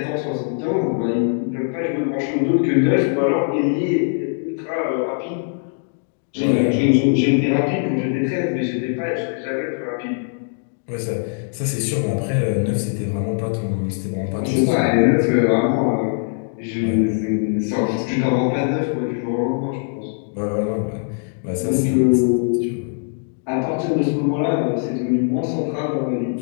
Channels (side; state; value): right; silent; digital silence